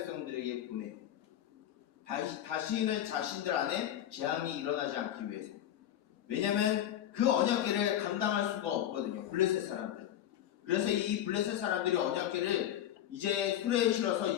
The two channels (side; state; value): right; quieter; 11.4 dB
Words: 보내요. 다시는 자신들 안에 재앙이 일어나지 않기 위해서. 왜냐하면 그 언약궤를 감당할 수가 없거든요, 블레셋 사람들. 그래서 이 블레셋 사람들이 언약궤를 이제 수레에 실어서